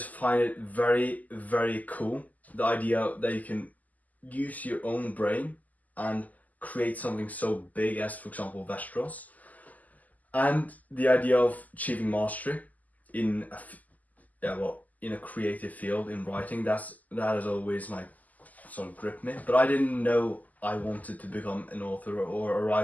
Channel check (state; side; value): late; right; 0.079 ms